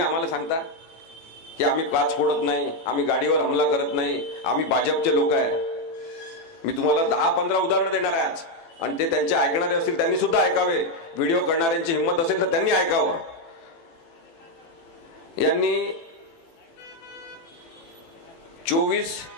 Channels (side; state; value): right; late; 18 ms